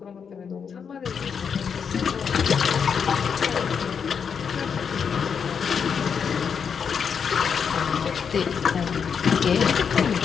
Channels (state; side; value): quieter; right; 6.7 dB